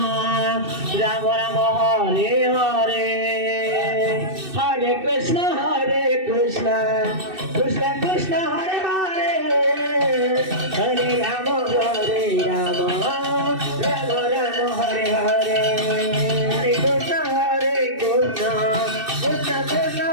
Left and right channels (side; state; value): left; late; 2.6 ms